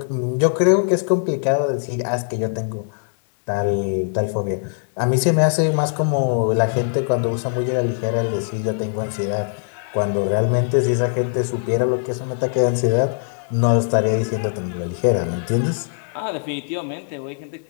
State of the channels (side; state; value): right; silent; digital silence